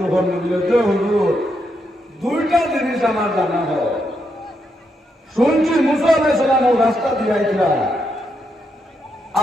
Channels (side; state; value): both; normal; correlation 0.80